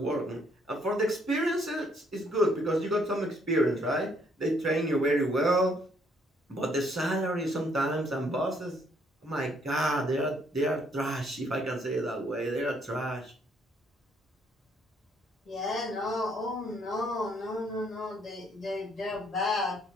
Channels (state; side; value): normal; both; correlation 0.68